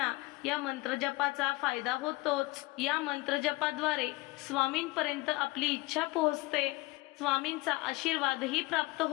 या मंत्रजपाचा फायदा होतोच. या मंत्रजपाद्वारे स्वामींपर्यंत आपली इच्छा पोहोचते. स्वामींचा आशीर्वादही प्राप्त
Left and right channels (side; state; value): right; quieter; 22.1 dB